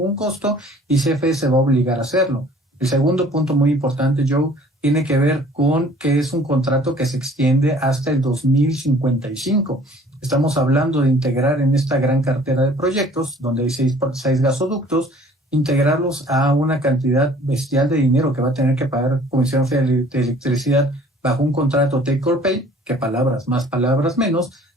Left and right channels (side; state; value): both; normal; correlation 0.53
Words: costo y CFE se va a obligar a hacerlo. El segundo punto muy importante, Joe, tiene que ver con que es un contrato que se extiende hasta el 2055. Estamos hablando de integrar en esta gran cartera de proyectos, donde hay seis gasoductos, integrarlos a una cantidad bestial de dinero que va a tener que pagar Comisión Federal de Electricidad bajo un contrato take or pay, que palabras más, palabras menos,